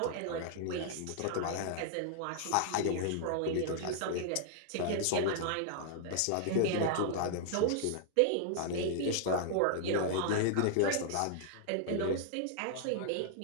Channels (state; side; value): different; both; correlation -0.01